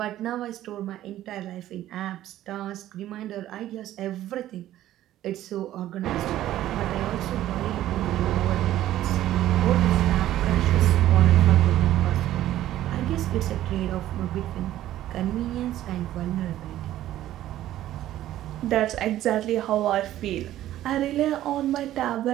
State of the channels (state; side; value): quieter; left; 13.4 dB